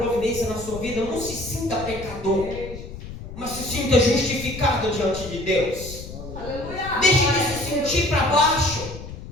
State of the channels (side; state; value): left; noise; rumble, 12 dB below the sound